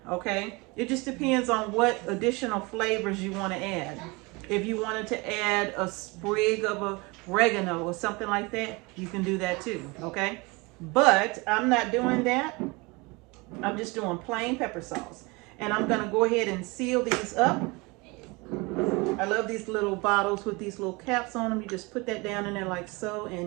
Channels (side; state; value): left; quieter; 26.0 dB